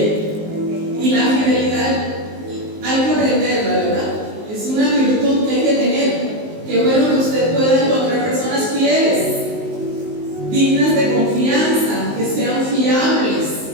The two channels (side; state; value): left; late; 19 ms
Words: Y la fidelidad hay que aprenderla, ¿verdad? Es una virtud que hay que tener. Qué bueno que usted pueda encontrar personas fieles, dignas de confianza, que sean fiables.